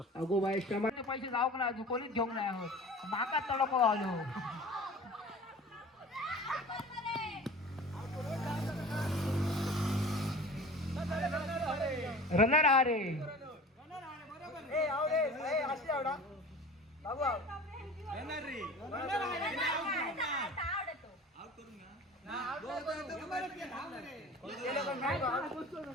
अगो बाय पैसे जाऊ ना कोणीच घेऊन नाही आहोत माका तडक आलो. रनर आ रे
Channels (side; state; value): both; normal; correlation 0.40